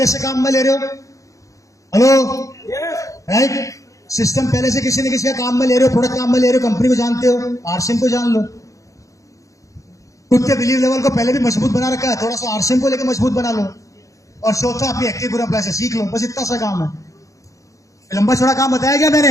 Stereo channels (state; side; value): late; right; 0.16 ms